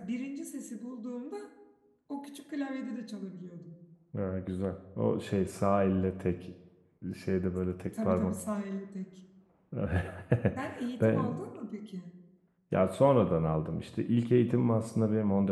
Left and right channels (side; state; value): both; identical; correlation 1.00